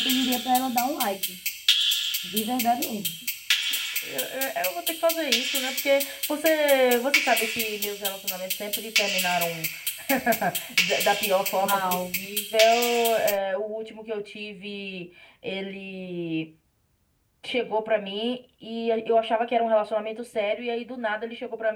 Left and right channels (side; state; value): both; identical; correlation 1.00